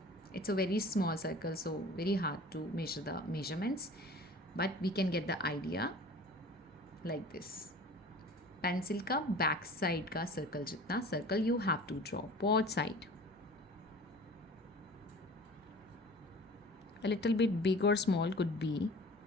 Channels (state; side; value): normal; both; correlation 0.42